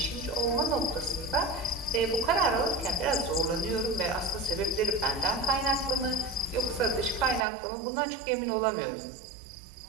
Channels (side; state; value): left; drops out; at 7.5 s